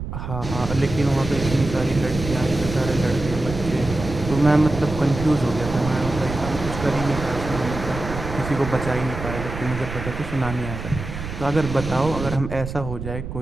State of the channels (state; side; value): noise; right; rumble, 8 dB below the sound